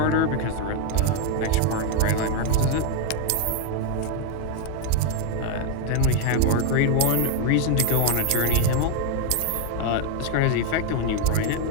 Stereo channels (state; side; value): different; both; correlation 0.01